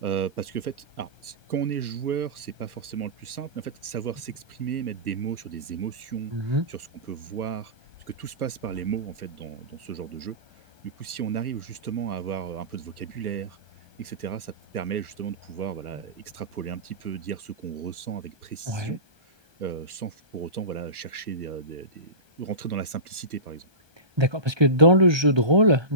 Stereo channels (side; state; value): left; late; 1.2 ms